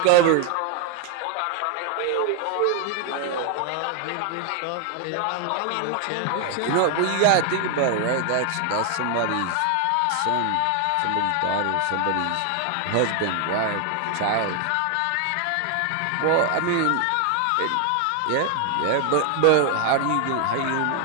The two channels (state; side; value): different; both; correlation 0.00